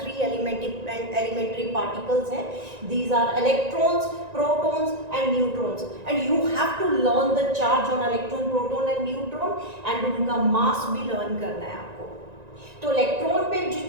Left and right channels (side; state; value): left; late; 1.9 ms